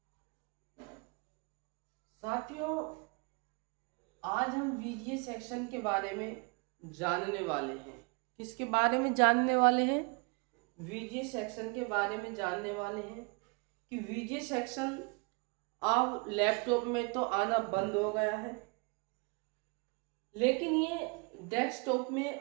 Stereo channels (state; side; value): quieter; left; 32.5 dB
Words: आज हम वीजीए सेक्शन के बारे में जानने वाले हैं। किसके बारे में जानने वाले हैं? वीजीए सेक्शन के बारे में जानने वाले हैं कि वीजीए सेक्शन अब लैपटॉप में तो आना बंद हो गया है, लेकिन ये डेस्कटॉप में